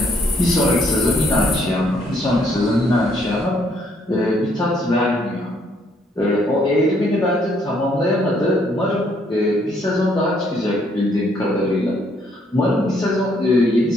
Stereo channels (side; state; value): both; normal; correlation 0.68